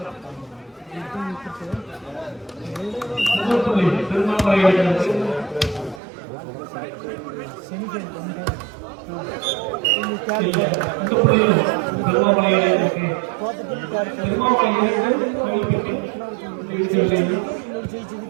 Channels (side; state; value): left; drops out; at 6.0 s